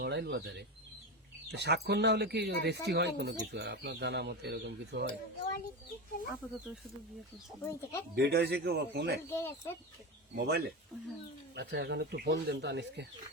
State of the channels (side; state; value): both; normal; correlation 0.20